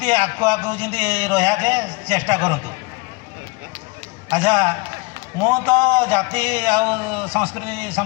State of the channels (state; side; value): quieter; right; 26.1 dB